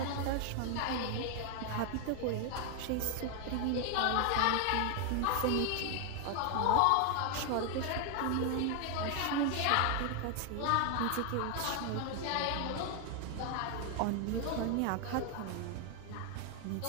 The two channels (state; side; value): different; both; correlation 0.00